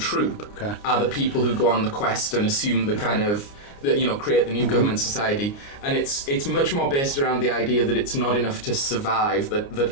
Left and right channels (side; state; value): right; late; 29 ms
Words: Are the people who go on the quest and assume the kind of. Create the new government society, and it's much more based around the idea that it's not enough to survive,